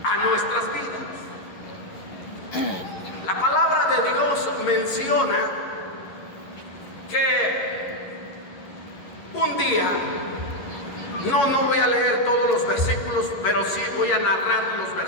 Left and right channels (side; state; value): right; late; 11 ms